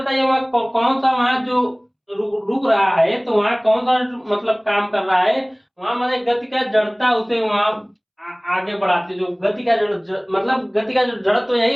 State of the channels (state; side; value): identical; both; correlation 1.00